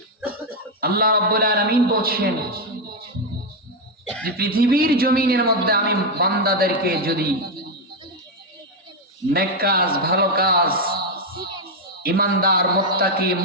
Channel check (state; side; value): normal; both; correlation 0.04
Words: আল্লাহ রাব্বুল আলামিন বলছেন যে পৃথিবীর জমিনের মধ্যে আমি বান্দাদেরকে যদি নেক কাজ, ভালো কাজ, ইমানদার, মুত্তাকি,